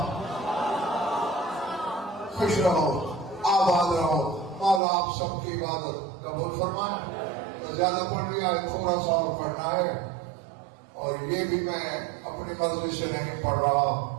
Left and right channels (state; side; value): drops out; left; at 4.8 s